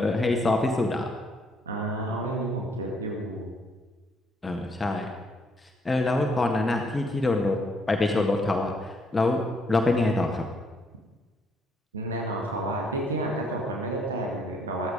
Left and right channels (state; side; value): normal; both; correlation 0.69